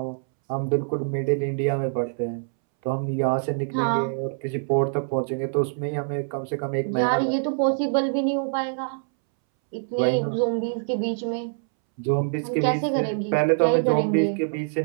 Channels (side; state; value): left; silent; 62 dB below the other